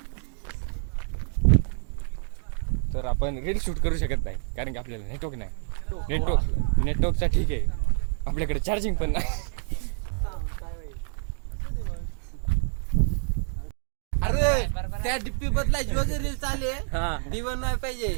तर आपण रील शूट करू शकत नाही कारण की आपल्याला नेटवर्क नाही. नेटवर्कचा ठीक आहे आपल्याकडे चार्जिंग पण नाही. अरे त्या डिप्पी बदलायची वगैरे चाले दिवण नाही पाहिजे.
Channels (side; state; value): left; silent; 55 dB below the other